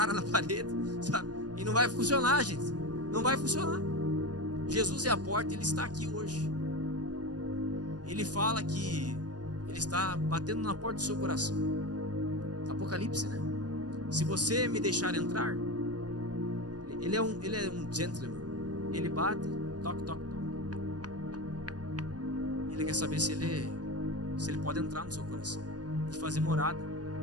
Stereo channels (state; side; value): late; left; 0.69 ms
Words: na parede, sabe? E não vai funcionar, gente. Não vai funcionar. Jesus é a porta, Ele está aqui hoje. Ele fala que Ele está batendo na porta do seu coração. Apocalipse, né? Se você me deixar entrar, Ele é um gentleman. Ele bate, toque, toque, toque. Ele quer saber se ele pode entrar no seu coração e fazer morada.